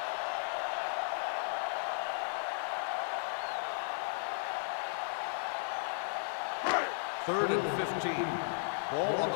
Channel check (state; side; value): silent; right; digital silence